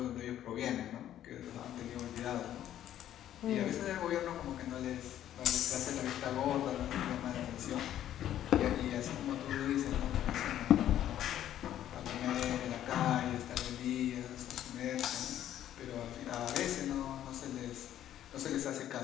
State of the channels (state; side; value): quieter; right; 11.6 dB